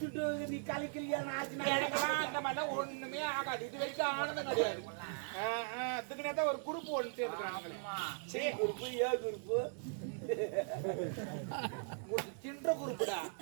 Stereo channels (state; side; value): silent; left; digital silence